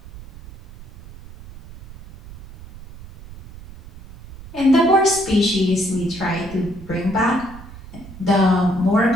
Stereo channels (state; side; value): noise; right; rumble, 17 dB below the sound